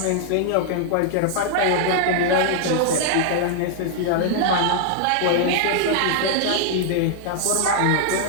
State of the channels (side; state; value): both; different; correlation -0.01